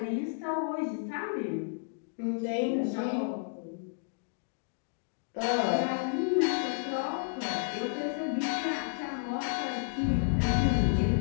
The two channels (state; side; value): silent; right; digital silence